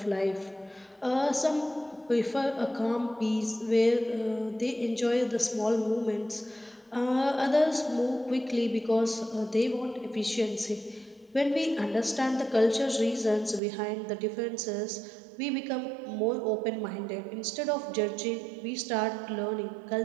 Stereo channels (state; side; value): drops out; left; at 13.6 s